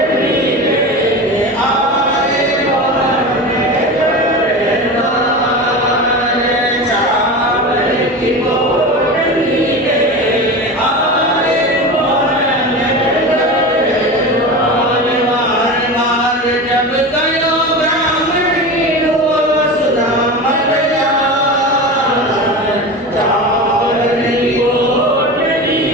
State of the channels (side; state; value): both; normal; correlation 0.27